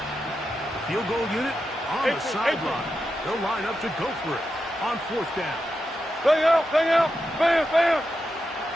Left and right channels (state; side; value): normal; both; correlation 0.88